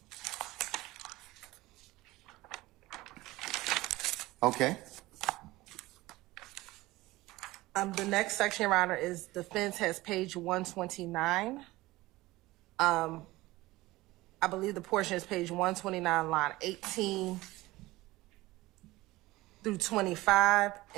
Okay. The next section, Your Honor, is defense has page 129. I believe the portion is page 129, line 18 through 25,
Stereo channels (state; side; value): quieter; left; 19.1 dB